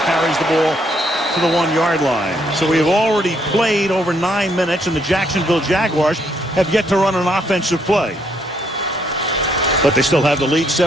carries the ball to the 1-yard line. So we have already played over 9 minutes, and the Jacksonville Jaguars have yet to run an offensive play. But they still have the lead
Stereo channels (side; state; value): both; normal; correlation 0.71